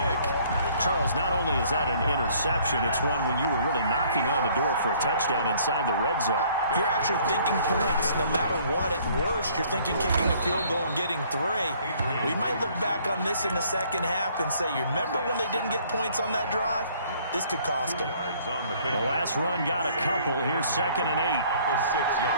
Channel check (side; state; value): both; inverted; correlation -0.59